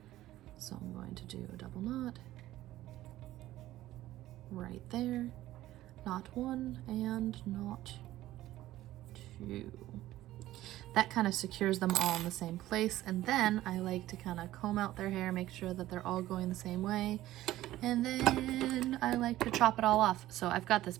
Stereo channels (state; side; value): quieter; left; 15.0 dB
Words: So I'm going to do a double knot right there. Knot 1 and knot 2. That kind of secures them all in the same place. And then I like to kind of comb out their hair, make sure that they're all going the same way. And then I like to chop it all off. So I've got this